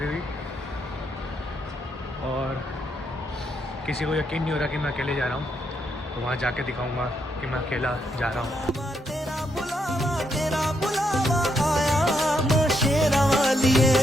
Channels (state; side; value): normal; both; correlation 0.77